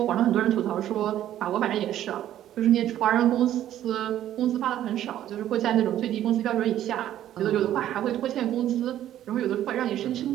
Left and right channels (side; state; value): left; quieter; 12.0 dB